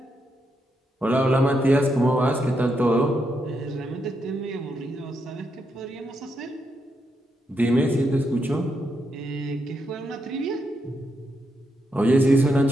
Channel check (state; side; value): normal; both; correlation 0.82